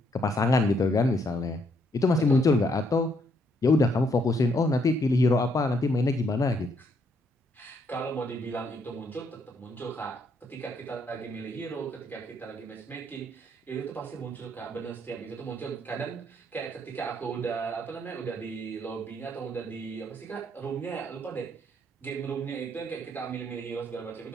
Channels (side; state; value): both; normal; correlation 0.72